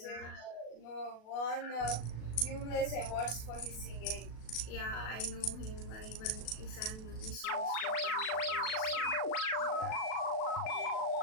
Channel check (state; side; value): late; right; 37 ms